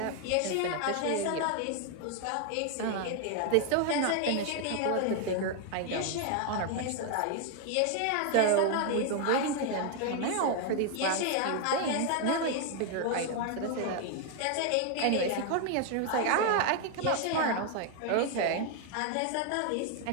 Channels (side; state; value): both; different; correlation 0.00